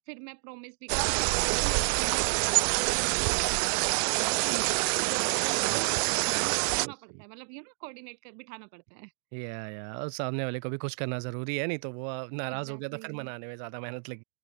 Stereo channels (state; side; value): silent; left; digital silence